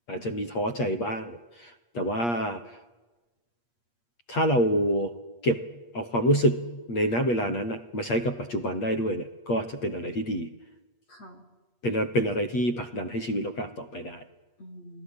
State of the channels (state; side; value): late; right; 8.5 ms